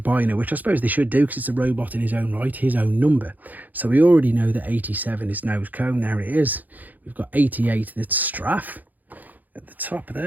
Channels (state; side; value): late; left; 0.082 ms